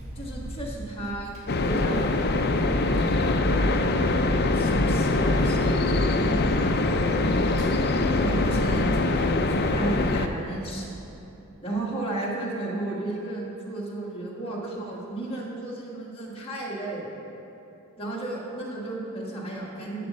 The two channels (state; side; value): normal; both; correlation 0.47